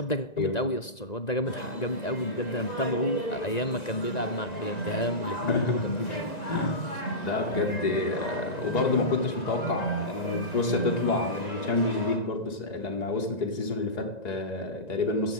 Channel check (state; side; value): late; right; 1.9 ms